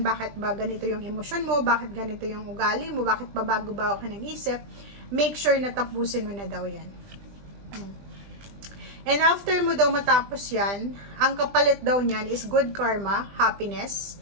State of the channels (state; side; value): late; left; 20 ms